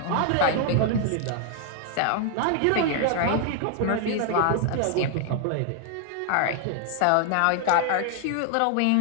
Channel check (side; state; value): both; different; correlation 0.00